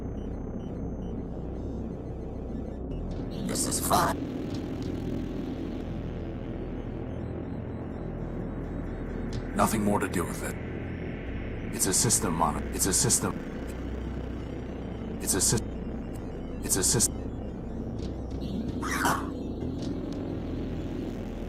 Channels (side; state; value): both; identical; correlation 1.00